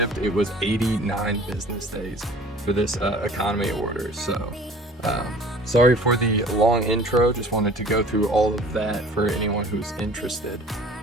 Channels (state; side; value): normal; both; correlation 0.48